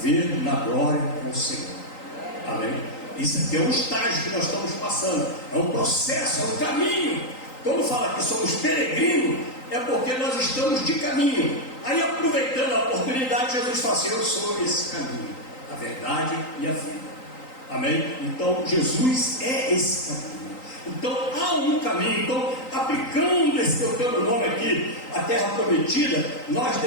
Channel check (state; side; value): late; right; 3.9 ms